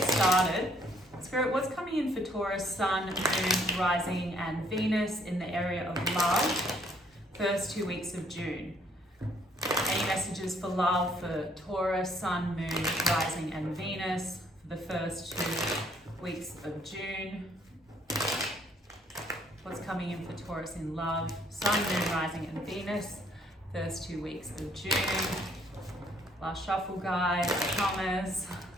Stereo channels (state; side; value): normal; both; correlation 0.65